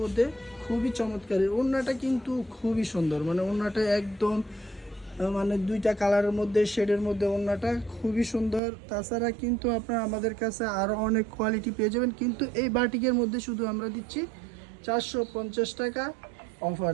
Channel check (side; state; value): left; drops out; at 8.6 s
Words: মধ্যে, খুবই চমৎকার। ওড়নাটা কিন্তু খুবই সুন্দর, ওড়নাটা একদম দুইটা কালারের মধ্যে, শেডের মধ্যে ওড়নাটা খুবই সুন্দর। তাছাড়া কিন্তু আপনারা আমাদের কাছে আরও অনেক কোয়ালিটি পেয়ে যাবেন, কিন্তু এই বাটিকের মধ্যে শুধু আমরা দিচ্ছি 450 টাকা অফার।